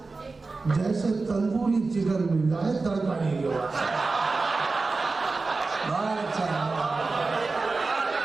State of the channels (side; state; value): left; quieter; 3.8 dB